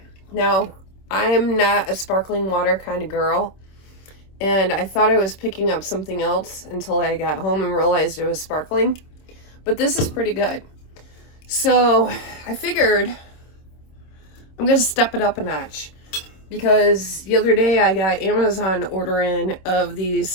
Now, I'm not a sparkling water kind of girl. And I thought I was picking up something else until I got home and realized it was sparkling. But this is pretty good. So I figured I'm going to step it up a notch. Because the other day I got Amazon order in of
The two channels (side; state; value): right; late; 26 ms